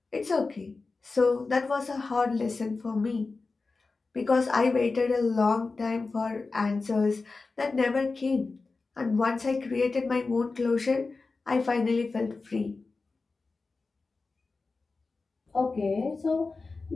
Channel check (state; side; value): quieter; right; 3.9 dB